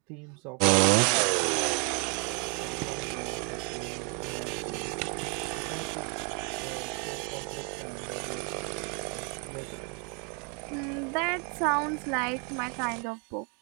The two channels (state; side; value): quieter; left; 36.5 dB